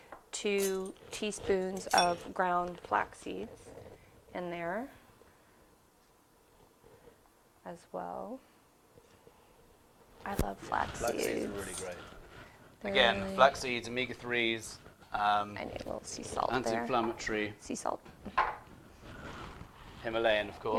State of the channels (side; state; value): both; identical; correlation 1.00